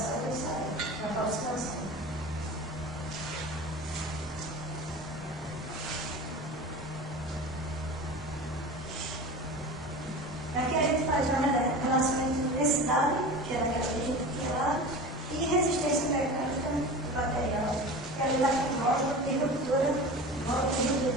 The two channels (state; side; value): normal; both; correlation 0.33